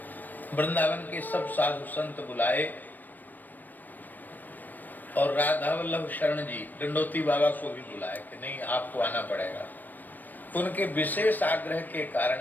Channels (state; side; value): late; right; 0.088 ms